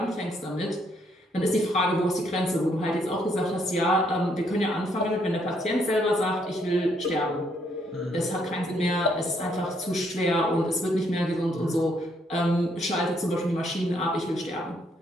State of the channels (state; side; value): normal; both; correlation 0.71